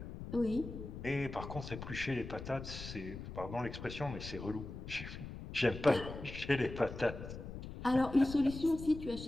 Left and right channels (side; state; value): left; noise; rumble, 10 dB below the sound